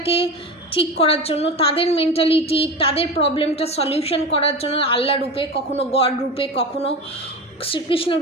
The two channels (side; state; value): both; normal; correlation 0.26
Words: ঠিক করার জন্য, তাদের মেন্টালিটি, তাদের প্রবলেমটা সলিউশন করার জন্য আল্লাহ রূপে, কখনো গড রূপে, কখনো শ্রীকৃষ্ণ